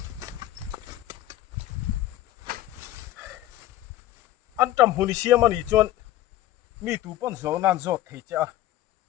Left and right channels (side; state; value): right; quieter; 14.2 dB